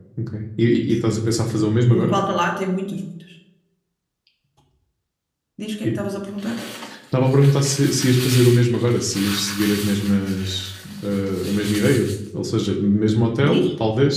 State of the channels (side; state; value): both; identical; correlation 1.00